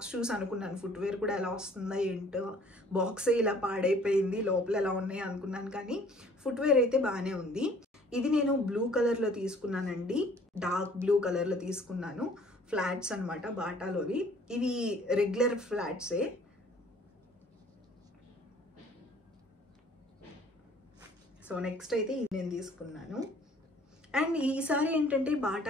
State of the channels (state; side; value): normal; both; correlation 0.55